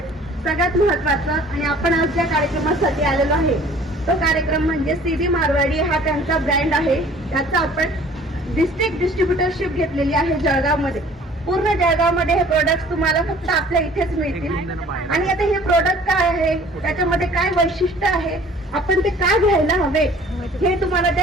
सगळ्यात महत्वाचं आणि आपण आज ज्या कार्यक्रमासाठी आलेलो आहे तो कार्यक्रम म्हणजे सीधी मारवाडी हा त्यांचा ब्रँड आहे. त्याचा आपण डिस्ट्रिक्ट डिस्ट्रीब्युटरशिप घेतलेली आहे जळगावमध्ये. पूर्ण जळगावमध्ये हे प्रोडक्ट तुम्हाला फक्त आपल्या इथेच मिळतील. आणि आता हे प्रोडक्ट काय आहे, त्याच्यामध्ये काय वैशिष्ट्य आहे, आपण ते काय घ्यायला हवे हे तुम्हाला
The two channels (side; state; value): both; normal; correlation 0.51